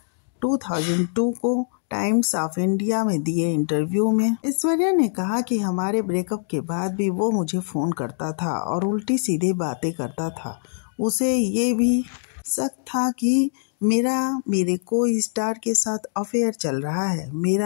2002 को टाइम्स ऑफ इंडिया में दिए इंटरव्यू में ऐश्वर्या ने कहा कि हमारे ब्रेकअप के बाद भी वो मुझे फ़ोन करता था और उल्टी सीधी बातें करता था। उसे ये भी शक था कि मेरे कोई स्टार के साथ अफेयर चल रहा है।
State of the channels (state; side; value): silent; right; digital silence